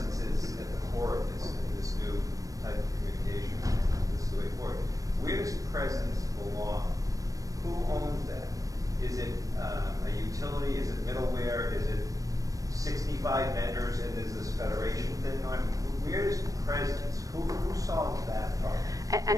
is at the core of this new type of communication. This is the way forward. Where does presence belong? Who owns that? Is it a utility? Is it middleware? Is it 65 vendors and is this federation thing on? Where is presence? Who solves that problem?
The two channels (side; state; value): left; late; 0.16 ms